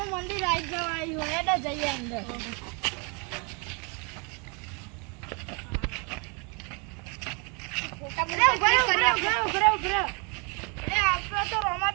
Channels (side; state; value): left; quieter; 33.4 dB